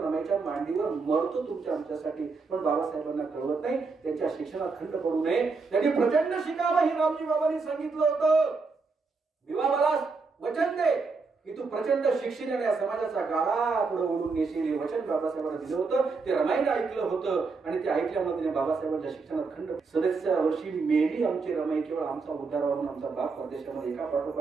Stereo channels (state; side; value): quieter; left; 4.4 dB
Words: रमाईच्या मांडीवर मरतो तुमच्या आमच्यासाठी. पण बाबासाहेबांना कळवत नाही, त्यांच्या शिक्षणात खंड पडू नये, त्यांनी प्रचंड शिकावं हे रामजी बाबांनी सांगितलं होतं. विवा मला वचन दे की तू प्रचंड शिक्षणाने या समाजाचा गाळा पुढे ओढून नेशील, हे वचन बाबासाहेबांना दिलं होतं. ते रमाईने ऐकलं होतं आणि ते ऐकल्यामध्ये बाबासाहेबांच्या शिक्षणात खंड. 37व्या वर्षी मेली आमची रमाई. केवळ आमचा उद्धार व्हावा, आमचा बाप परदेशामध्ये एका